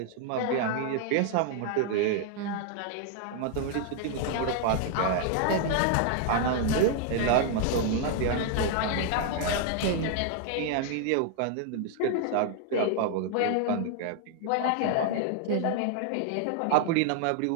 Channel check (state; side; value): different; both; correlation 0.00